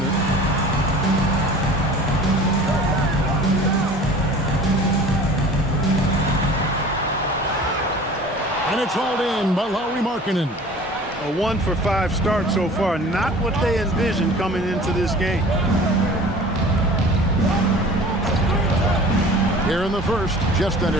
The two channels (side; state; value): both; normal; correlation 0.43